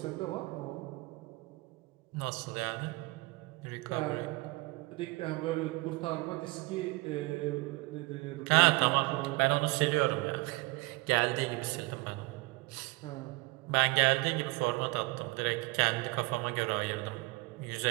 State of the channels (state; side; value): quieter; left; 23.3 dB